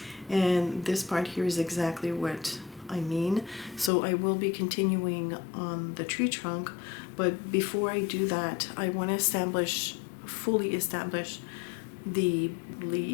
And this part here is exactly what I mean. So I will be continuing on the tree trunk, but before I do that, I want to fully establish the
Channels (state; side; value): drops out; right; at 3.9 s